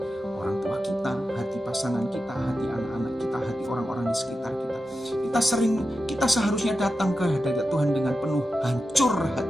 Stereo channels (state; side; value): normal; both; correlation 0.91